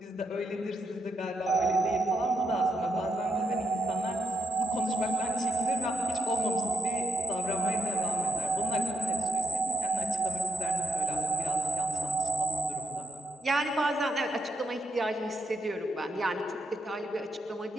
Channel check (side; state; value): both; normal; correlation 0.81